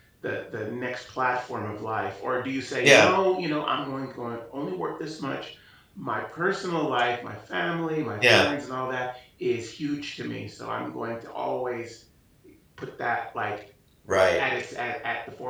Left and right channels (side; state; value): both; identical; correlation 1.00